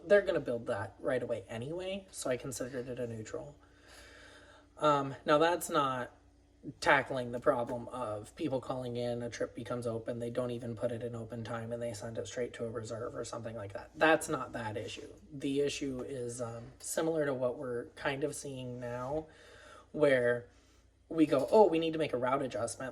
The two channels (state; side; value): identical; both; correlation 1.00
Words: they're going to build that right away anyway, so I considered it a neutral. Now that's not tackling the problem of people calling in, a trip becomes open, they don't even put it in open time and they send it straight to a reserve or something like that. That's not that issue. The issue is similar to what we're kind of seeing now, where we go, oh, we need to make a route